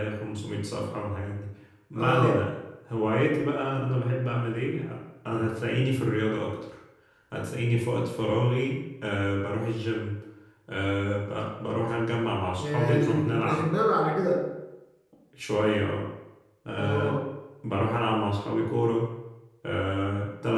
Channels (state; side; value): identical; both; correlation 1.00